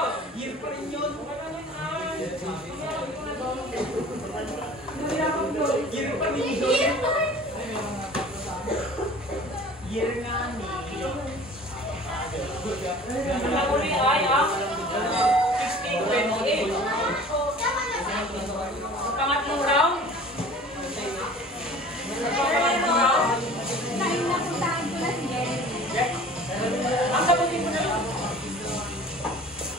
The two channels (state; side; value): normal; both; correlation 0.45